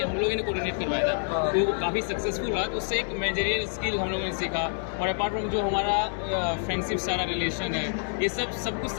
हम लोगों ने कोऑर्डिनेट करवाया था, तो काफ़ी सक्सेसफुल रहा, तो उससे एक मैनेजरियल स्किल हम लोगों ने सीखा। और अपार्ट फ्रॉम जो हमारा फ्रेंडशिप सारा रिलेशन है, ये सब कुछ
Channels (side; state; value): right; silent; 60 dB below the other